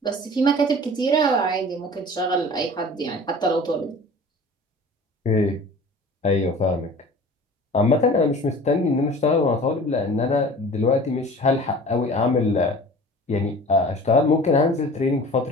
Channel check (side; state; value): both; normal; correlation 0.42